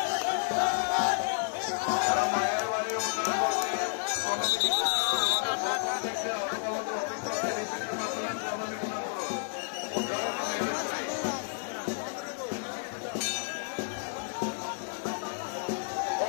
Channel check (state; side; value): silent; right; digital silence